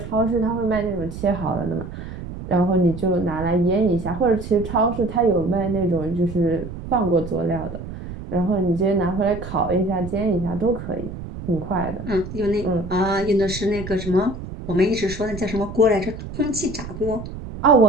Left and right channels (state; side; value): noise; right; rumble, 10 dB below the sound